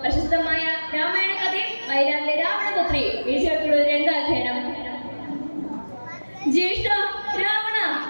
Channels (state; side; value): inverted; both; correlation -1.00